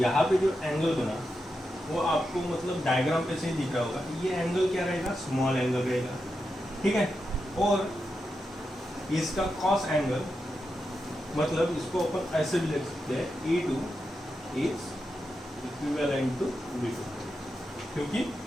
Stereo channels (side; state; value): both; normal; correlation 0.88